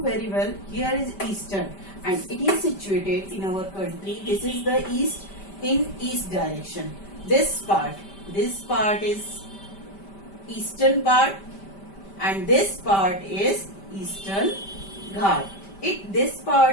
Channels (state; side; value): late; right; 5.1 ms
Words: well, here is eastern and it is situated in our country. This is the east, in east direction. This part is eastern part and this part is eastern Ghat. This